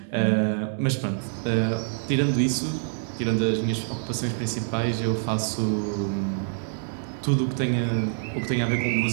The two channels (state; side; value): silent; left; digital silence